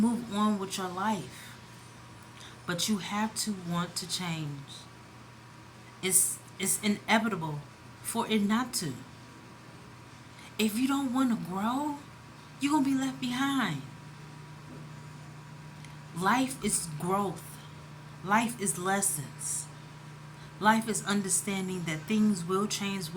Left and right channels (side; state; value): both; identical; correlation 1.00